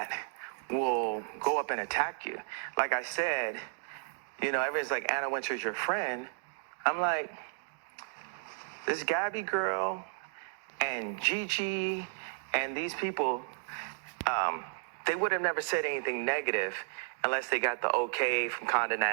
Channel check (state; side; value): silent; left; digital silence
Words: will go up and attack you. Like I said, you know, everyone's like, Anna Wintour's your friend. I'm like, this Gabby girl and Gigi and these people, they would have never said anything negative unless they got the okay from Condé